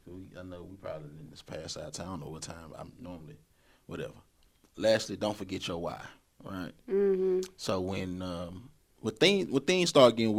I know we probably in this past our time. I don't know what time I'm normally, whatever. Lastly, don't forget your why, right? Mm-hmm. So when things start getting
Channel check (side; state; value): both; identical; correlation 1.00